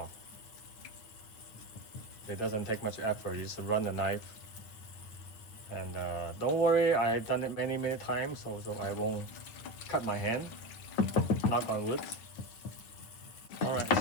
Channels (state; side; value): late; right; 9.2 ms